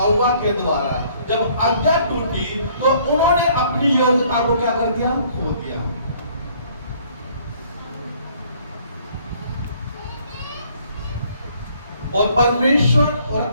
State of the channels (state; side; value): inverted; both; correlation -0.61